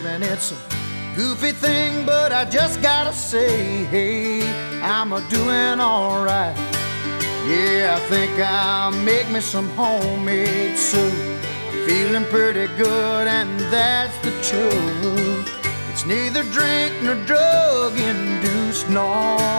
And it's a goofy thing, but I just gotta say, hey, I'm a-doing alright. Yeah, I think I'll make me some homemade soup. I'm feeling pretty good, and that's the truth. It's neither drink nor drug induced. No,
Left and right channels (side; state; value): both; inverted; correlation -1.00